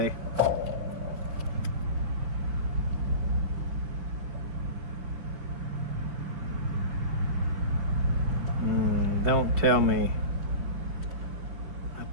Don't tell me I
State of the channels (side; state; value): left; late; 5.1 ms